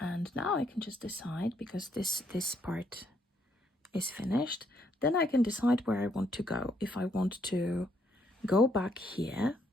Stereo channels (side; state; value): both; normal; correlation 0.72